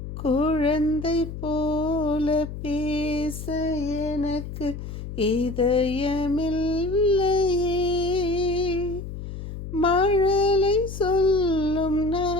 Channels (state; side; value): noise; left; hum, 9 dB below the sound